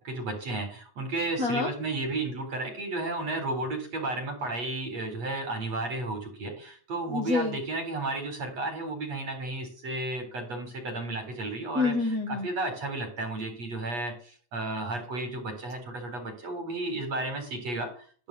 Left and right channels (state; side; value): late; left; 8.3 ms